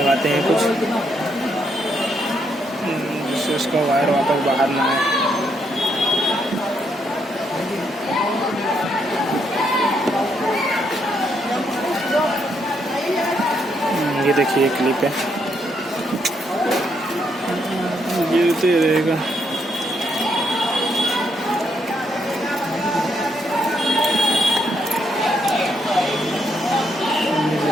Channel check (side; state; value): both; normal; correlation 0.75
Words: हैं कुछ, जिससे उसका वायर वापस बाहर ना आए। ये देखिए क्लिप है, गिरते रहेगा।